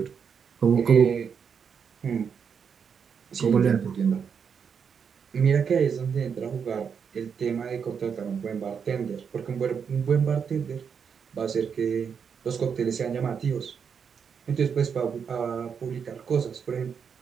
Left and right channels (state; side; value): quieter; left; 6.8 dB